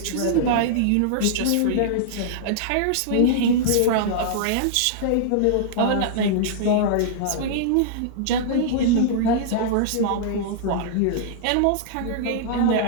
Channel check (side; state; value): both; different; correlation -0.02